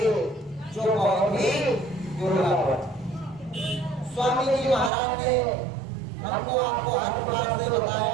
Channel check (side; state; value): left; drops out; at 4.9 s